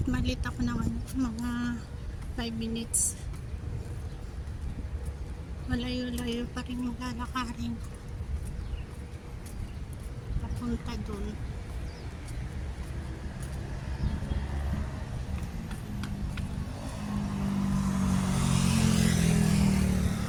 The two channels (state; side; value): identical; both; correlation 1.00